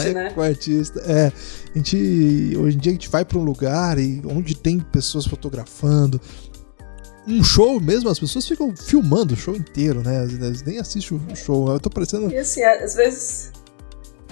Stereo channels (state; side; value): silent; right; digital silence